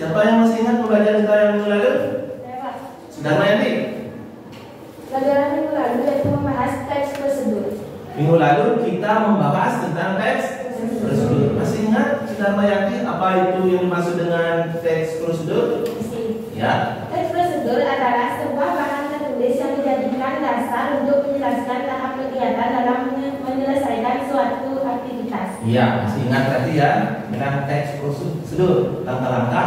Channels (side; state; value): both; identical; correlation 1.00